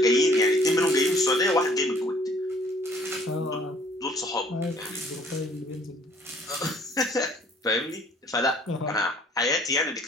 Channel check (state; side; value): normal; both; correlation 0.58